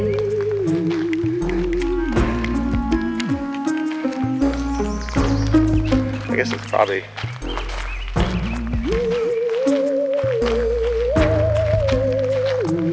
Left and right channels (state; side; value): identical; both; correlation 1.00